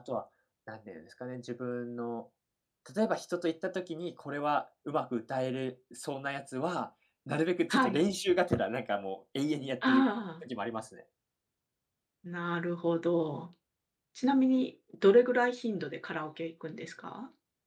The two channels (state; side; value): identical; both; correlation 1.00